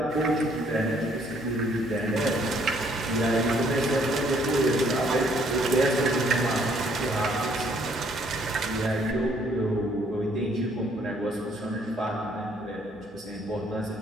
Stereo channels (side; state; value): both; normal; correlation 0.65